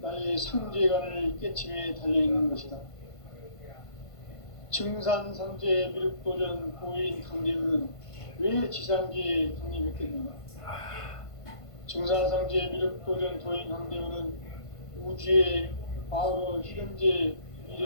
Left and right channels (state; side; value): late; right; 1.5 ms